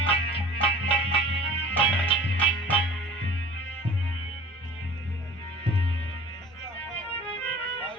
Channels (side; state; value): left; noise; hum, 30 dB below the sound